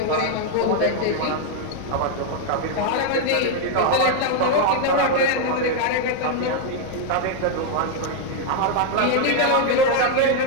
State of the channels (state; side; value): different; both; correlation 0.00